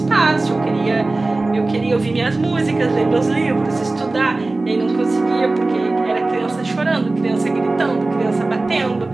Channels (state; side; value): quieter; left; 3.2 dB